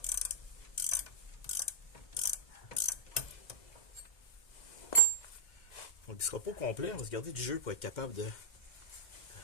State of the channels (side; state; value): right; late; 2.1 ms